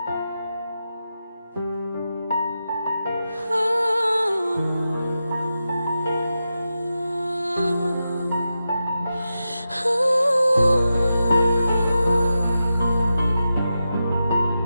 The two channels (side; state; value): both; inverted; correlation -0.90